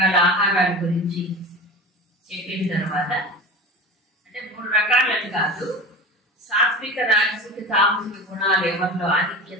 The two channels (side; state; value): both; normal; correlation 0.31